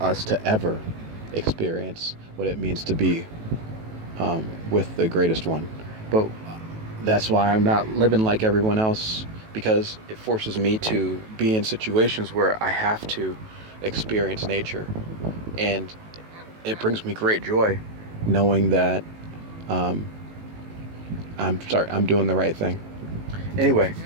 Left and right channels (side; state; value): left; late; 18 ms